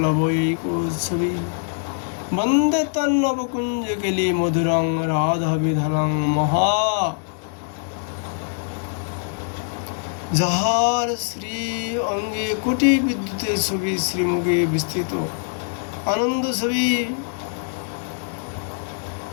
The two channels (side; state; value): right; silent; digital silence